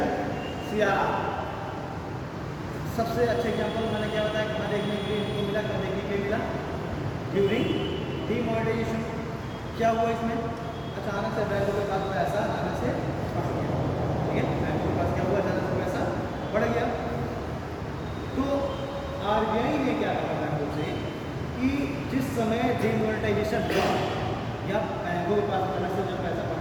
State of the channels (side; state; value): both; identical; correlation 1.00